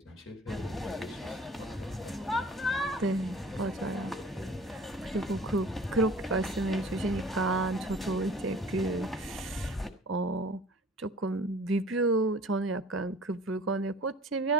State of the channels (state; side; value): normal; both; correlation 0.47